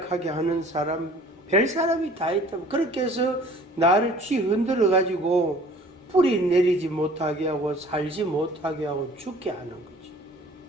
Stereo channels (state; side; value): normal; both; correlation 0.50